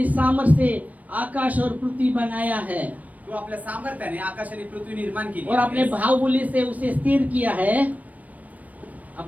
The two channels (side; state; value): left; late; 0.073 ms